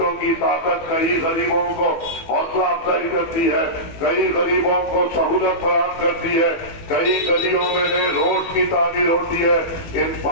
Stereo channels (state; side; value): late; right; 18 ms